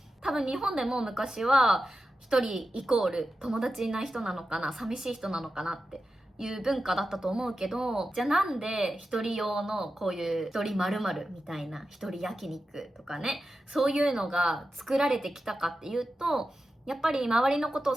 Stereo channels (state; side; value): normal; both; correlation 0.91